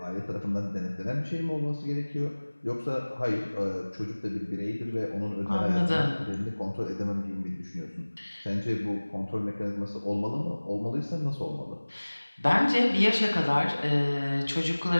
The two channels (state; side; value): inverted; both; correlation -1.00